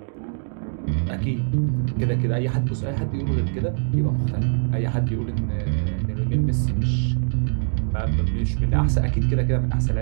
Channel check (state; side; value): silent; left; digital silence